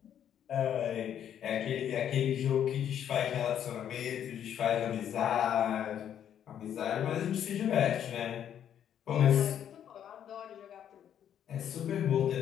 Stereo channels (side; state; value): right; quieter; 9.6 dB